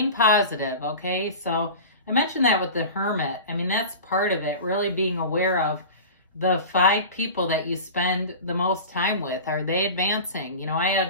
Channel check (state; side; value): inverted; both; correlation -0.33